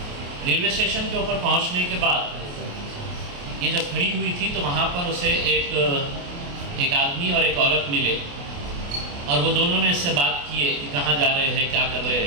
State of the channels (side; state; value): left; late; 28 ms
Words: रेलवे स्टेशन के ऊपर पहुंचने के बाद ये जब खड़ी हुई थी तो वहाँ पर उसे एक आदमी और एक औरत मिले और वो दोनों ने इससे बात किए कि कहाँ जा रहे हैं, क्या कर रहे